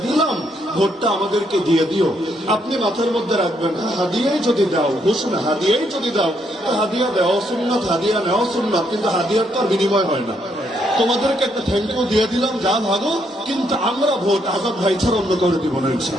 দিলাম, ভোটটা আমাদেরকে দিয়ে দিও, আপনি মাথার মধ্যে রাখবেন, হাদিয়াই যদি দাও, ঘোষণা হাদিয়াই যদি দাও, তো হাদিয়া দেওয়া সুন্নাত, হাদিয়া নেওয়া সুন্নাত, কিন্তু হাদিয়ার তো আর বিনিময় হয় না। তোমাদেরকে একটা থ্যাংক ইউ দিয়ে দিলাম, যা ভাগো, কিন্তু আমরা ভোট আজাদ ভাই ছাড়া অন্য করে দিব না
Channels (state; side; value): normal; both; correlation 0.74